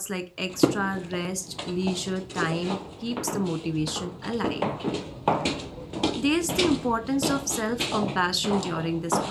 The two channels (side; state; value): both; identical; correlation 1.00